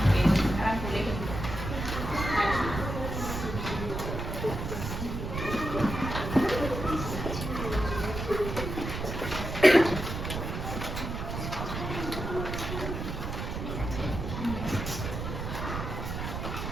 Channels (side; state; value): right; noise; rumble, 5 dB below the sound